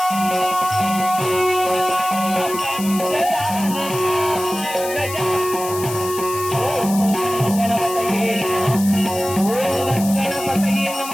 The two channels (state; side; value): noise; left; hiss, 10 dB below the sound